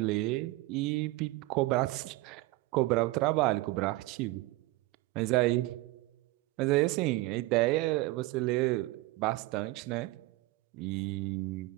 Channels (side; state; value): left; quieter; 19.8 dB